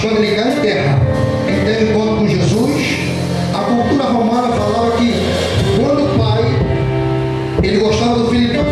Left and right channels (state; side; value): identical; both; correlation 1.00